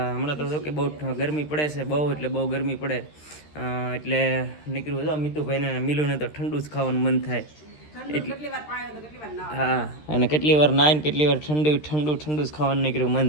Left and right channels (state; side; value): late; right; 13 ms